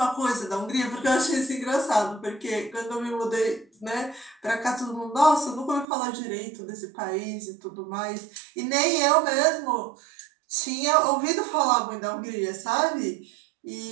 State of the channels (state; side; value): drops out; left; at 5.9 s